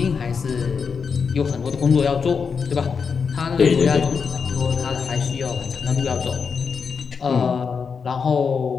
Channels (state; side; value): quieter; right; 5.8 dB